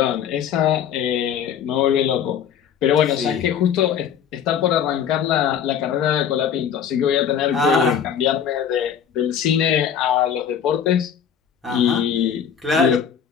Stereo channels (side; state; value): right; quieter; 8.3 dB